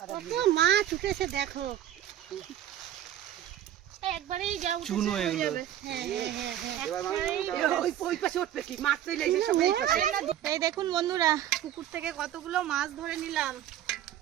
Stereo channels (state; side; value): quieter; left; 11.6 dB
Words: মাছ উঠেছে দেখো। একবারেই যাও চুনো এগুলো। হ্যাঁ হ্যাঁ হ্যাঁ, ওই পাশে উঠবে কি মাছ চলে এসে সব এই পাশে। এই দেখুন বন্ধুরা, পুকুর থেকে কতগুলো মাছ ধরে নিলাম।